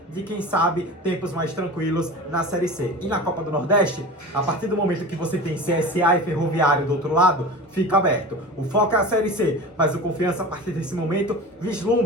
de, quem sabe, tempos mais tranquilos na Série C. E na Copa do Nordeste, a partir do momento que você tem CSA e Ferroviário do outro lado, fica aberto. O foco é a Série C, mas o Confiança, a partir desse momento,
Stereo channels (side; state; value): both; normal; correlation 0.33